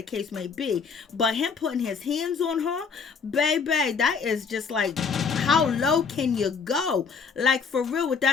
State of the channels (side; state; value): right; quieter; 5.6 dB